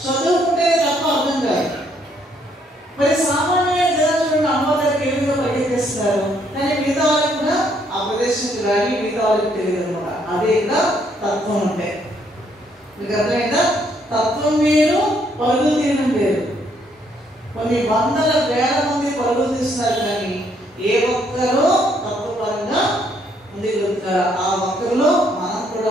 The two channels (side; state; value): both; normal; correlation 0.70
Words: చదువుకుంటే తప్ప అర్థం కాదు. మరి సామాన్య జనం చూడండి అమ్మవారికి ఏ విధంగా పరిగెత్తిస్తున్నారు, కానీ మిగతా వాళ్ళకి కూడా ఆ ప్రదేశానికి రాని మిగతా వాళ్ళకి తెలియదు అనమాట. అదే ఇంకా తత్వం అంటే మీకు అర్థమైందా? తత్వం వేరు, పరుగులు తీయడం వేరు. కొన్ని 100,000 మంది పరుగులు తీస్తున్నారు, కానీ ఏ ఒక్కరో తత్వపరంగా ముందుకు వెళ్తారు. ఆ ఒక్కరిలో మనం